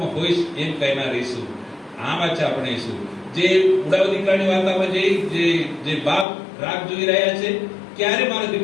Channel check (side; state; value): right; drops out; at 6.2 s